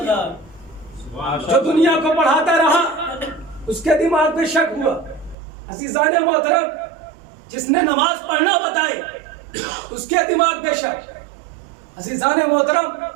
کیا، جو دنیا کو پڑھاتا رہا اس کے دماغ پہ شک ہوا۔ عزیزان محترم، جس نے نماز پڑھنا بتائی اس کے دماغ پہ شک۔ عزیزان محترم،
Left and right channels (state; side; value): drops out; left; at 5.4 s